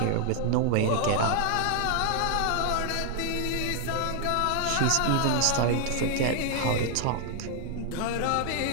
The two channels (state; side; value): different; both; correlation 0.00